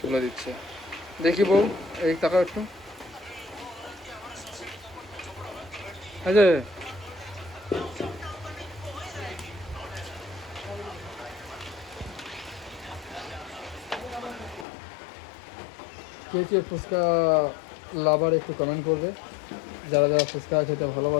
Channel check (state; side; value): drops out; right; at 14.7 s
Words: তুলে দিচ্ছে। দেখি বউ, এই টাকা একটু এই যে কে কে ফুচকা লাভার একটু কমেন্ট করবে, যারা যারা ফুচকা খেতে